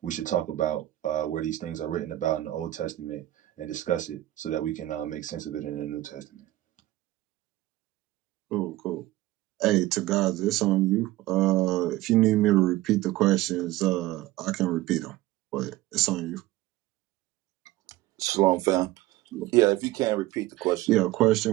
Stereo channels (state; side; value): quieter; left; 16.4 dB